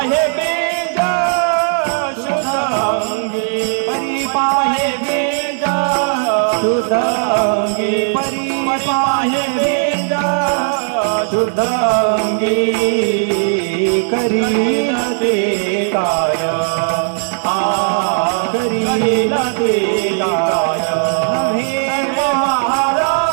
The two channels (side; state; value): left; silent; 64 dB below the other